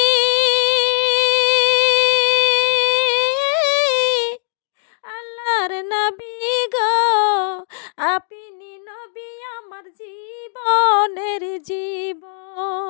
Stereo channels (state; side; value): silent; right; digital silence